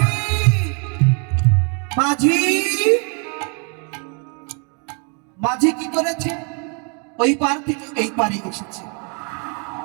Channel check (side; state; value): left; quieter; 36.7 dB